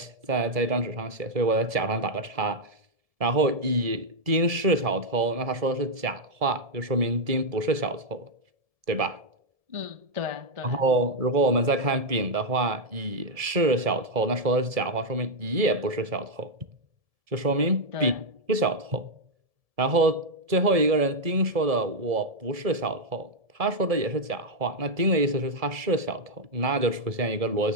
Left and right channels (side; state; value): left; late; 1.7 ms